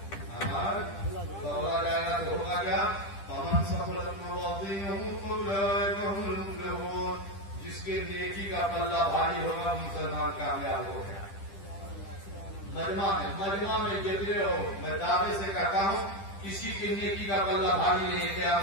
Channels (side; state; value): right; late; 10 ms